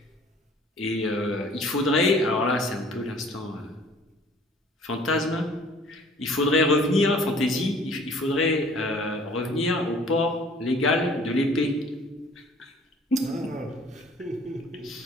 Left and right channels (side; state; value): both; normal; correlation 0.53